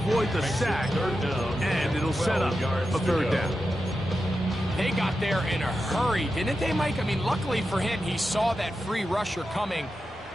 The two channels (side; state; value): both; normal; correlation 0.90